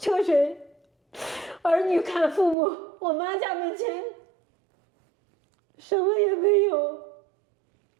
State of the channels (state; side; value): drops out; left; at 2.6 s